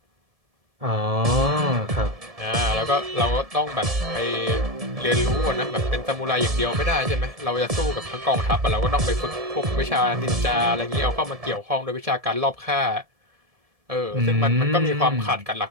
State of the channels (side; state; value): left; late; 1.7 ms